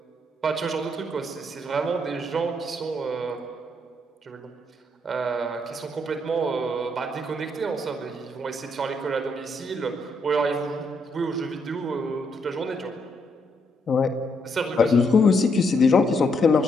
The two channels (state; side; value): normal; both; correlation 0.75